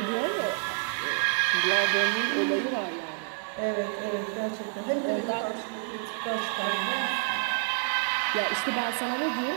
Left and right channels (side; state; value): left; silent; 59 dB below the other